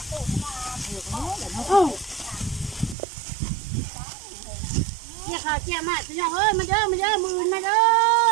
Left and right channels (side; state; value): left; drops out; at 3.0 s